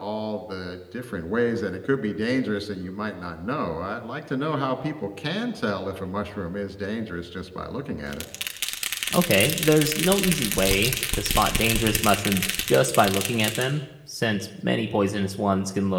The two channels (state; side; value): identical; both; correlation 1.00